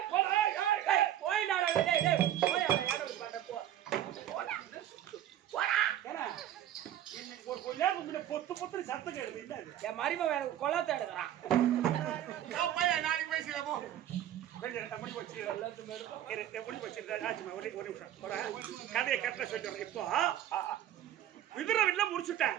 பொத்து பொத்து சத்தம் கேடுது. என் மரும கொலாத்த எடுக்கிறான். நாளைக்கு பேசுற போ. கதையை கட்ட சொல்றேன். இப்போ விதுரவில்ல முடிச்சுட்டேன்.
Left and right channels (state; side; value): quieter; left; 11.7 dB